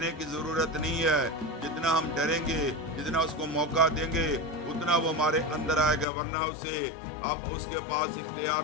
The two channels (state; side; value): drops out; right; at 6.1 s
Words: کی ضرورت نہیں ہے۔ جتنا ہم ڈریں گے، جتنا اس کو موقع دیں گے، اتنا وہ ہمارے اندر آئے گا، ورنہ اسے اب اس کے پاس اختیار